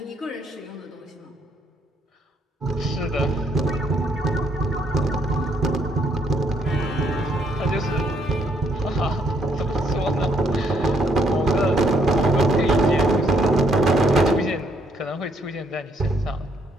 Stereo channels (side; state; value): both; normal; correlation 0.71